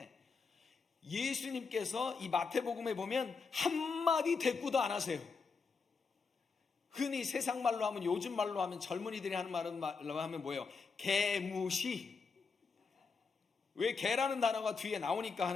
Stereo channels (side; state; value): right; quieter; 4.9 dB